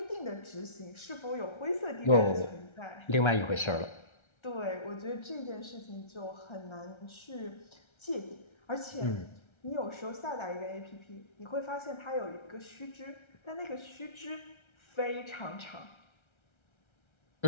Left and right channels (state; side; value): late; right; 1.3 ms